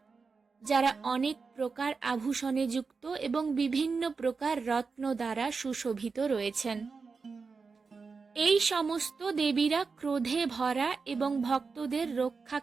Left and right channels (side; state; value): left; quieter; 4.8 dB